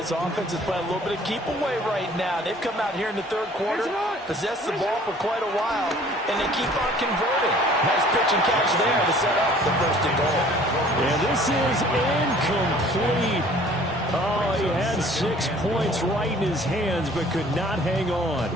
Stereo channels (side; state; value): both; normal; correlation 0.53